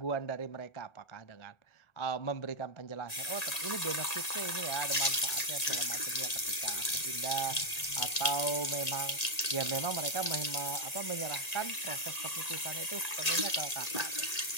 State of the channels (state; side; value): late; right; 1.8 ms